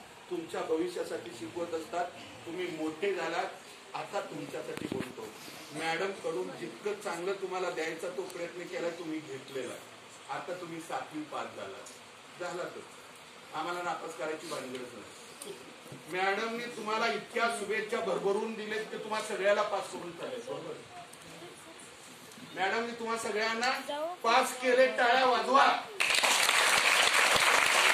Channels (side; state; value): both; identical; correlation 1.00